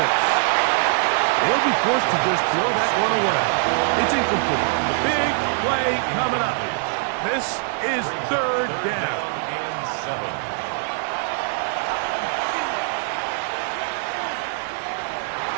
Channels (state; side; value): silent; left; digital silence